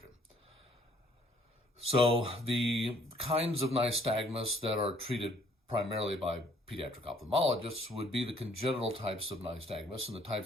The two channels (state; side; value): normal; both; correlation 0.62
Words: So the kinds of nystagmus that are treated primarily by pediatric ophthalmologists would be the congenital types of nystagmus and the